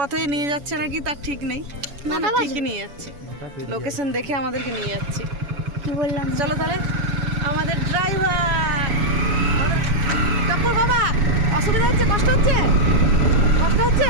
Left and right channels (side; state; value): left; late; 7.0 ms